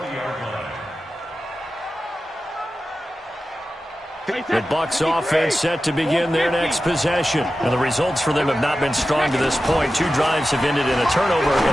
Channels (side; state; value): both; normal; correlation 0.93